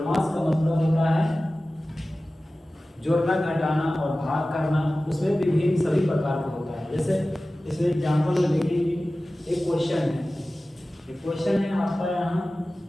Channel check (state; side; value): normal; both; correlation 0.96